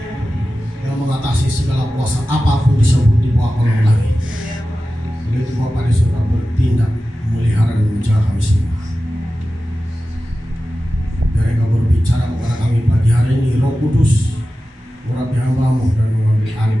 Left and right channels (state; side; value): normal; both; correlation 0.94